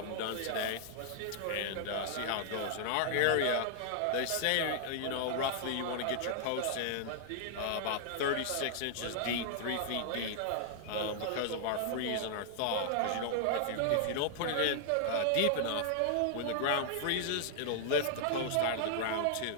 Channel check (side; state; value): both; different; correlation -0.01